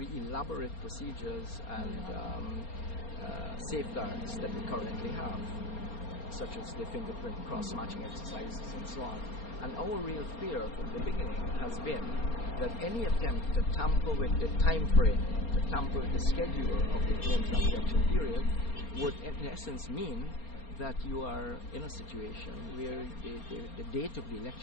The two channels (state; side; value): late; right; 4.3 ms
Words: elaborate procedures and safeguards that we currently have, such as the fingerprint cross-matching exercises and so on. And our real fear from the beginning has been that any attempt to tamper with the time frame, to tamper with the schedule of the claims and objection period would in essence mean that you are in a situation where the date of the